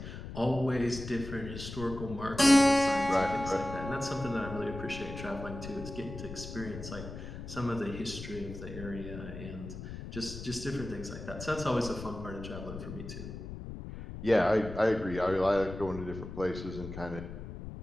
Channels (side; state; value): left; noise; rumble, 10 dB below the sound